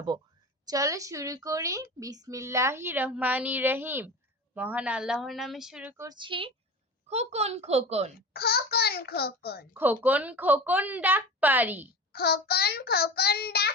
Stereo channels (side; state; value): both; normal; correlation 0.32